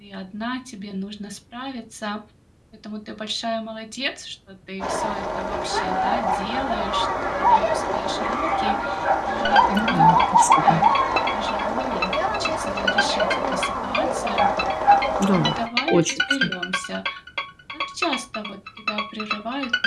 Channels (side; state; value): both; identical; correlation 1.00